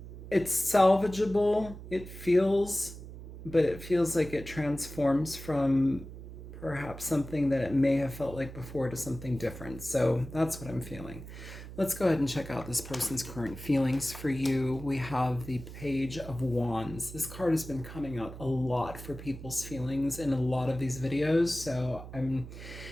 it's salvageable, but it feels like it transforms from perhaps something that it may have felt like before to something different. So that's what I'm feeling. Let's go ahead and check out this person's current feelings for you. We have the Page of Wands. This card has been coming out a lot for people's feelings in a lot of these videos. So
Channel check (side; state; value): right; noise; hum, 13 dB below the sound